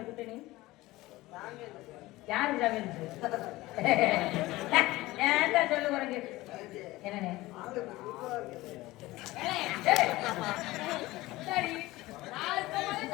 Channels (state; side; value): quieter; right; 18.8 dB